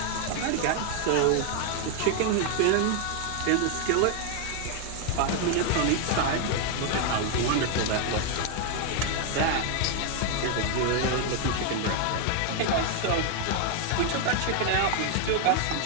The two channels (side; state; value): both; different; correlation 0.00